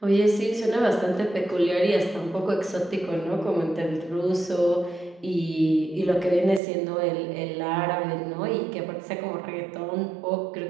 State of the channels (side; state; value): left; drops out; at 6.6 s